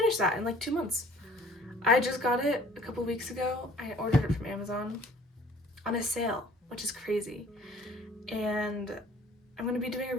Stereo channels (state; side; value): normal; both; correlation 0.53